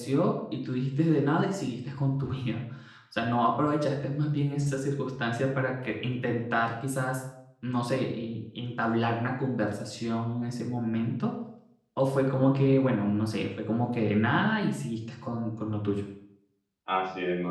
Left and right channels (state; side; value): identical; both; correlation 1.00